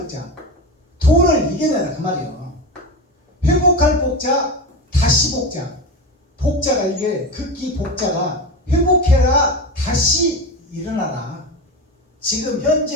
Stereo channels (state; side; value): normal; both; correlation 0.22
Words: 돈을 이겨내라 그 말이에요. 회복할 복자, 다시 복자. 복자가 이게 극기 복자가 회복해라, 다시 일어나라. 지금